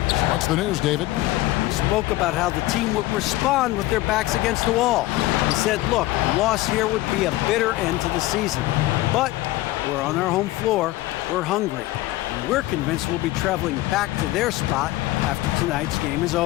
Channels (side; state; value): right; quieter; 17.5 dB